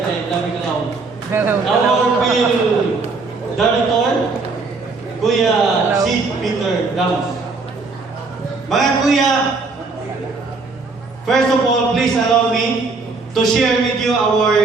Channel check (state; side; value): quieter; left; 4.0 dB